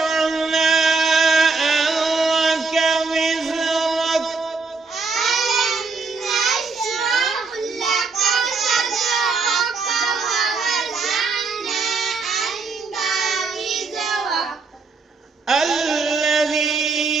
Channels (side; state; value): left; quieter; 4.3 dB